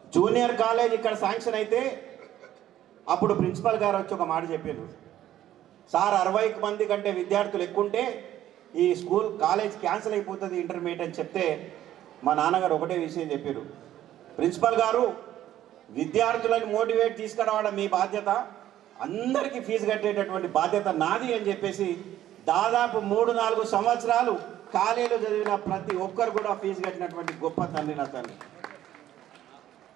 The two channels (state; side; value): quieter; left; 12.5 dB